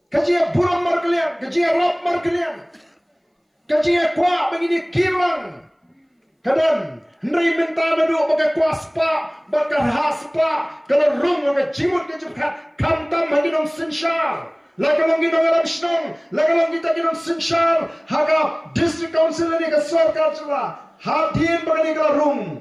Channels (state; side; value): identical; both; correlation 1.00